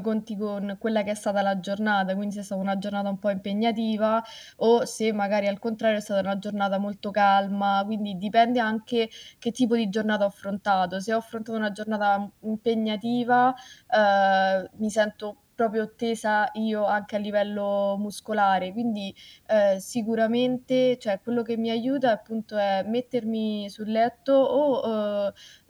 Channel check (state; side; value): identical; both; correlation 1.00